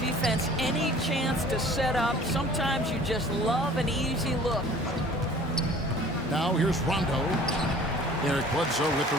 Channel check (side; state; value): both; normal; correlation 0.49